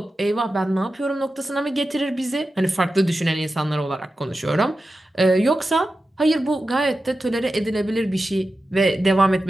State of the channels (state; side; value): normal; both; correlation 0.92